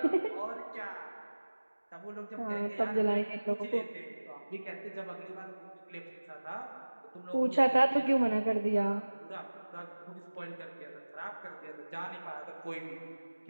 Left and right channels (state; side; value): inverted; both; correlation -1.00